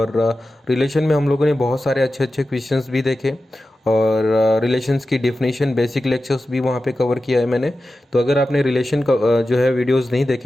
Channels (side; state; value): both; normal; correlation 0.93